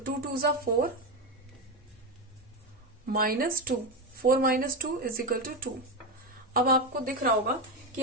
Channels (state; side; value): normal; both; correlation 0.13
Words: 2 2 = 4 -2, 4 - 2 इज इक्वल टू 2। अब आपको दिख रहा होगा कि